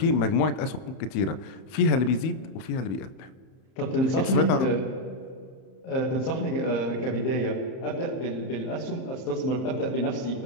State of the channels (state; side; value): late; right; 31 ms